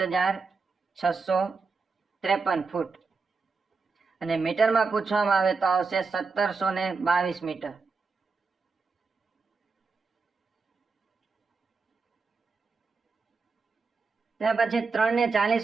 ફૂટ. અને મીટરમાં પૂછવામાં આવે તો આવશે 1722 મીટર. ત્યાર પછી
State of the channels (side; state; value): left; quieter; 4.5 dB